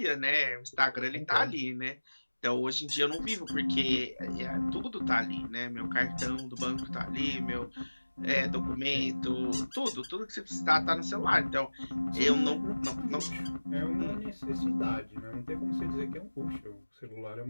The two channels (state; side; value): inverted; both; correlation -1.00